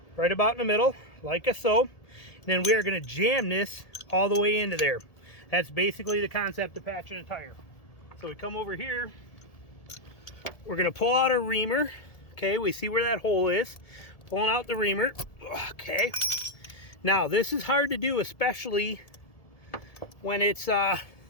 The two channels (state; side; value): late; right; 1.7 ms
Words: Right about in the middle, like so. And then we are going to jam this all the way into there. That's basically the concept of patching a tire. So we come over here. We're going to pull out our reamer. Okay, we see where that hole is. Pulling out the reamer. Okay. Now, this is hard to do, especially when it's